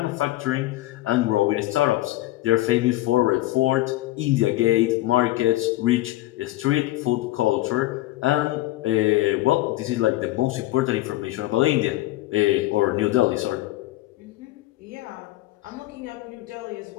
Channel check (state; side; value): quieter; right; 17.2 dB